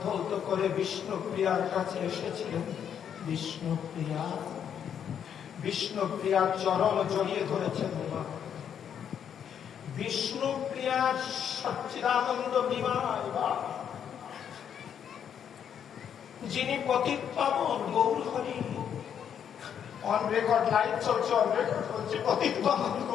ধৌত করে বিষ্ণুপ্রিয়ার কাছে এসেছিলেন। বিষ্ণুপ্রিয়া, বিষ্ণুপ্রিয়ার চরণ জড়িয়ে ধরেছেন। বিষ্ণুপ্রিয়ার সচ্চিদানন্দ বিমায়, যিনি পতিত পাবন গৌরহরি, অন রেকর্ড লাইভ চলছে, অন রেকর্ড হচ্ছে, পতিত পাবন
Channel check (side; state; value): right; quieter; 8.5 dB